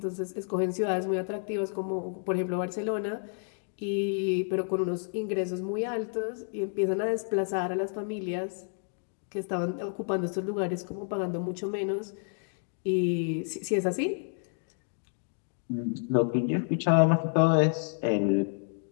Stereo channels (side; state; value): right; silent; 58 dB below the other